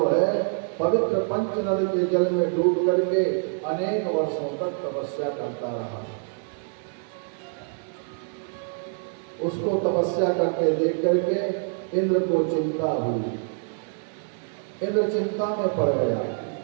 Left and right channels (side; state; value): left; silent; 58 dB below the other